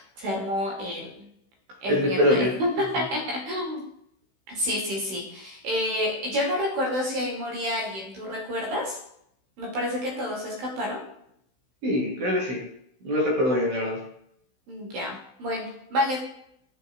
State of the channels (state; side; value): late; left; 16 ms